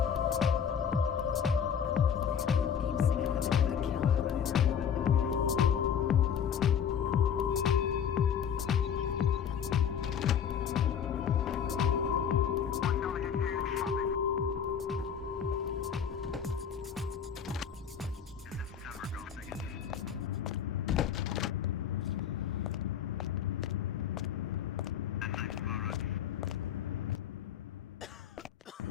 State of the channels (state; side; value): quieter; right; 7.9 dB